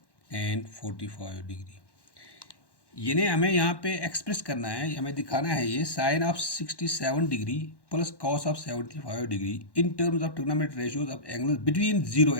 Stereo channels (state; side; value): late; right; 1.1 ms